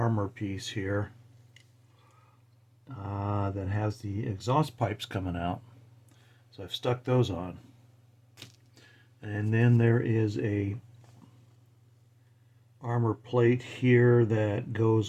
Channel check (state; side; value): identical; both; correlation 1.00